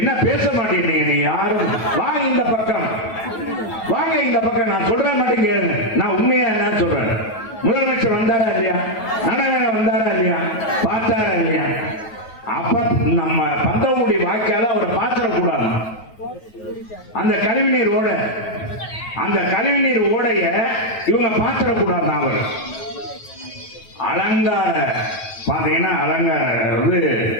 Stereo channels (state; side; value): late; right; 9.2 ms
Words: பேச மாட்டேங்க? நீ யாரும் வாங்க இந்த பக்கம், வாங்க இந்த பக்கம். நான் சொல்றேன் மட்டும் கேளுங்க. நான் உண்மையா என்ன சொல்றேன். முதலமைச்சர் வந்தாரா இல்லையா? நடைபயணம் வந்தாரா இல்லையா? பார்த்தாரா இல்லையா? அப்ப நம்ம பந்தவனுடைய வாய்க்கால அவரை பார்த்துடக்கூடாது. அந்த கழிவுநீர் ஓடைய இவங்க பார்த்துடக்கூடாது. அவர் அலங்கார பாத்தீங்கன்னா அலங்கார